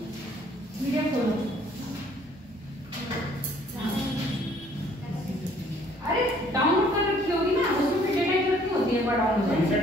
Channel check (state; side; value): normal; both; correlation 0.60